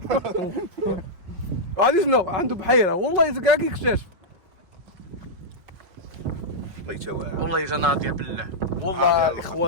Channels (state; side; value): late; left; 5.4 ms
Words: غادي شنو عنده بحيره والله كاع كيكتشف. الله يتواعد والله جا ناضيه بالله والله